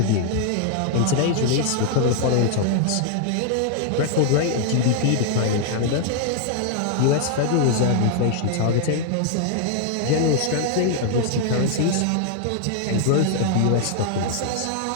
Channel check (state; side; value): different; both; correlation 0.00